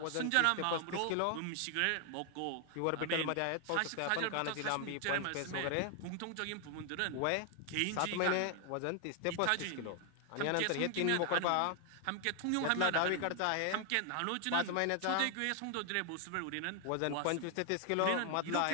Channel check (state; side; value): different; both; correlation 0.00